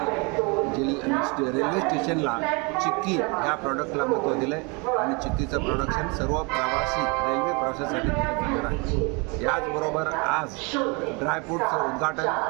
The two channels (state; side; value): quieter; left; 30.2 dB